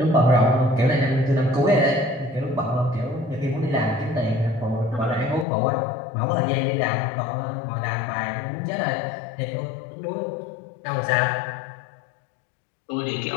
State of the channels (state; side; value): drops out; right; at 5.5 s